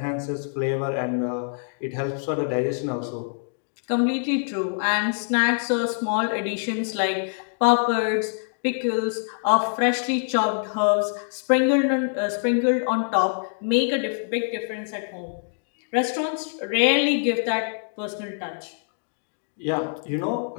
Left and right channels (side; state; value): right; silent; digital silence